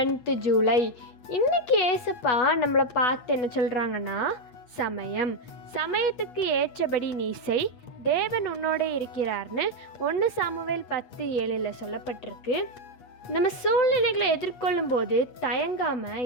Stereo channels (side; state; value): right; late; 8.3 ms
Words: July. இன்னைக்கு ஏசப்பா நம்மளை பார்த்து என்ன சொல்கிறாங்கன்னா, சமயத்துக்கு ஏற்றபடி நீ செய், தேவன் உன்னோட இருக்கிறார்னு 1 சாமுவேல் 10:7 சொல்லப்பட்டிருக்கு. நம்ம சூழ்நிலைகளை எதிர்கொள்ளும் போது தயங்காமல்